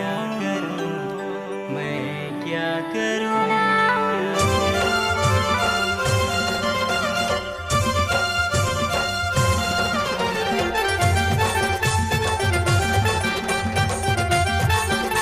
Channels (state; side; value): identical; both; correlation 1.00